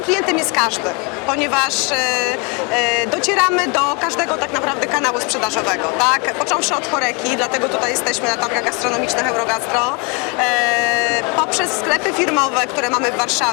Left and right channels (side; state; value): right; quieter; 32.1 dB